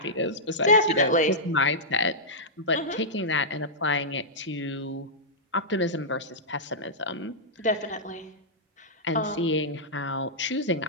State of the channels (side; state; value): both; normal; correlation -0.12